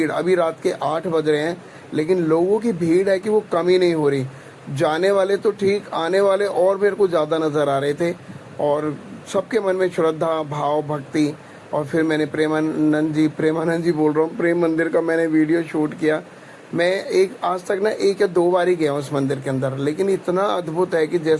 अभी रात के 8 बज रहे हैं, लेकिन लोगों की भीड़ है कि वो कम ही नहीं हो रही। जाने वाले तो ठीक, आने वाले और मेरे को ज़्यादा नज़र आ रहे थे। और सबके मन में श्रद्धा, भाव, भक्ति। और फिर मैंने प्रेमानंद जी बोल रहा हूँ, प्रेम मंदिर का मैंने वीडियो शूट किया। मैं आज तक ना 1 या 2 बार ही गया हूँ उस मंदिर के अंदर, लेकिन इतना अद्भुत है कि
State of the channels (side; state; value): both; identical; correlation 1.00